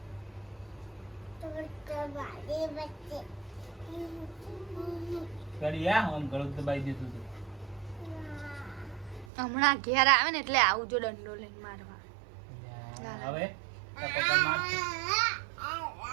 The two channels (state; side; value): drops out; left; at 9.2 s